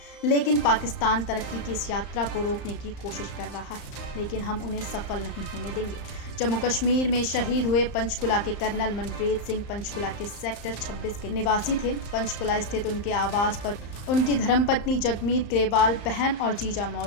लेकिन पाकिस्तान तरक्की की इस यात्रा को रोकने की कोशिश कर रहा है, लेकिन हम उन्हें सफल नहीं होने देंगे। जम्मू कश्मीर में शहीद हुए पंचकुला के कर्नल मनप्रीत सिंह पंचकुला के सेक्टर 26 के निवासी थे। पंचकुला स्थित उनके आवास पर उनकी धर्मपत्नी जगमीत ग्रेवाल, बहन और जीजा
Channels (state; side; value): late; right; 35 ms